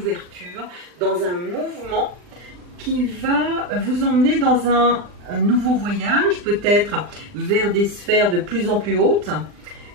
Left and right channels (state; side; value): late; left; 39 ms